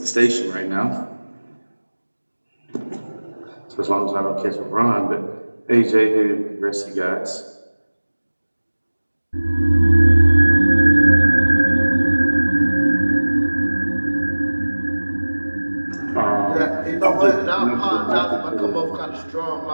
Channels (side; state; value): both; inverted; correlation -1.00